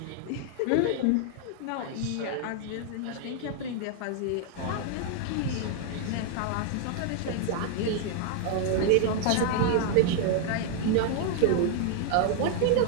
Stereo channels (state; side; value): different; both; correlation 0.00